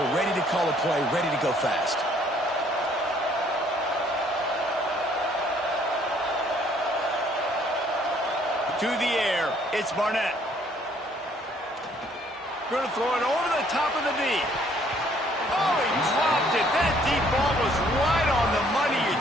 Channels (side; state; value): both; normal; correlation 0.63